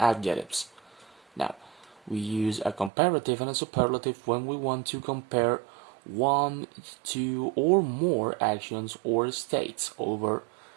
Now, we use a comparative and a superlative when we want to compare one, two, or more actions or states over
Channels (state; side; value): drops out; left; at 2.9 s